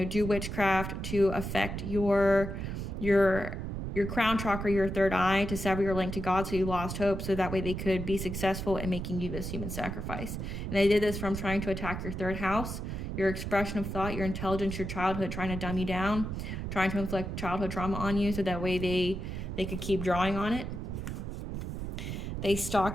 do witchcraft to affect your crown chakra, your third eye, to sever your link to God, so you lost hope, so that way they could be successful in making you this human sacrifice. And they did this from trying to attack your third house, your expression of thought, your intelligence, your childhood, trying to dumb you down, trying to inflict childhood trauma on you, so that way they could keep drawing on it. They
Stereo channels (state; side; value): noise; right; rumble, 5 dB below the sound